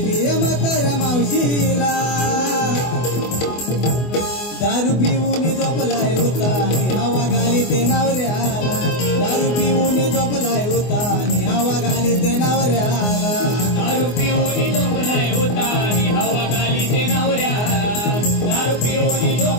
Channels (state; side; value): late; right; 24 ms